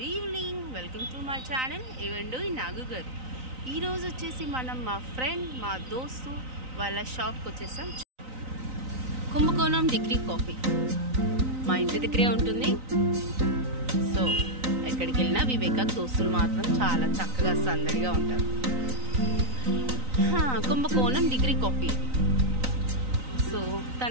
evening. Welcome to my channel ఏవండు నాగు గారు. ఈరోజు వచ్చేసి మనం మా ఫ్రెండ్, మా దోస్తు వాళ్ళ షాప్కి వచ్చేసాం. కుంభకోణం డిగ్రీ కాఫీ మా ఇంటి దగ్గరే ఉంటుంది. సో ఎక్కడికి వెళ్ళినా వివేక దోస్తులు మాత్రం చాలా చక్కగా సందడిగా ఉంటారు. కుంభకోణం డిగ్రీ కాఫీ. సో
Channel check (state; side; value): late; left; 3.9 ms